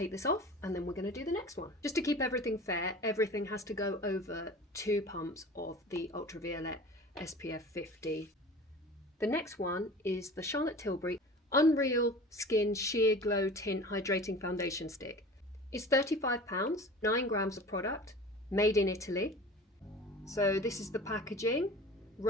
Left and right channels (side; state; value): both; normal; correlation 0.39